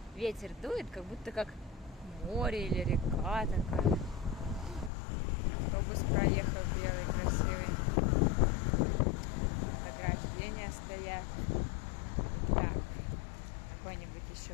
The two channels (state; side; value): drops out; right; at 4.9 s